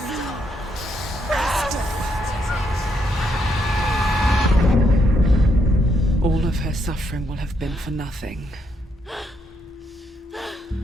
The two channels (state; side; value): normal; both; correlation 0.76